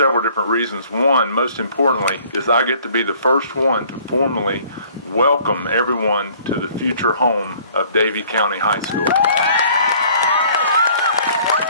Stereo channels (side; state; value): both; inverted; correlation -0.55